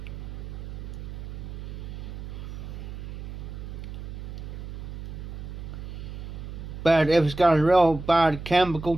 But if it's got a real bad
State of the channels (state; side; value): noise; right; hum, 9 dB below the sound